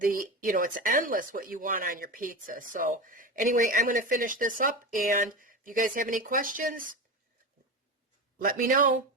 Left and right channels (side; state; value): both; normal; correlation 0.23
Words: endless what you want on your pizza. So anyway, I'm going to finish this up, and If you guys have any questions, let me know.